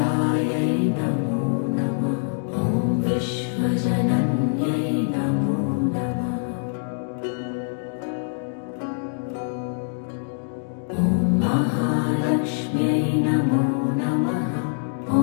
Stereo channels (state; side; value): silent; right; digital silence